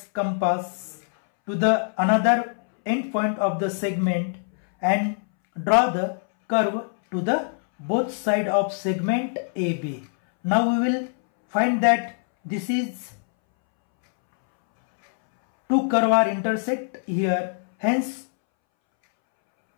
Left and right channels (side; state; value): right; silent; 63 dB below the other